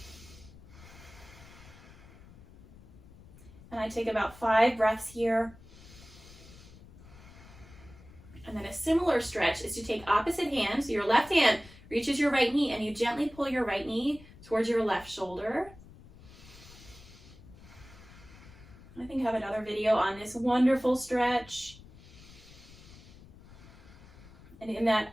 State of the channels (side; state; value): left; noise; rumble, 20 dB below the sound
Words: And I take about 5 breaths here. And then a similar stretch is to take opposite hands. So your left hand reaches your right knee and you gently pull your right knee towards your left shoulder. I think I have another video on this wonderful stretch. And in that,